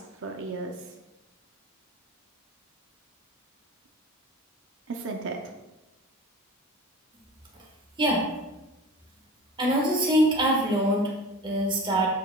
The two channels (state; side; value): normal; both; correlation 0.37